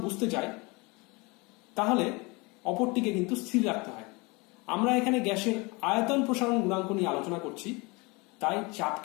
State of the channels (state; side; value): quieter; right; 26.7 dB